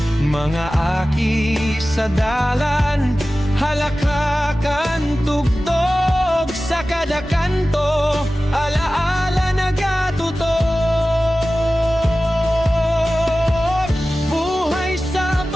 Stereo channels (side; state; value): both; normal; correlation 0.96